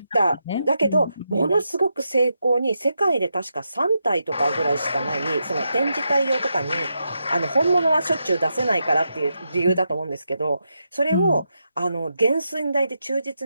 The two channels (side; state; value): both; inverted; correlation -0.85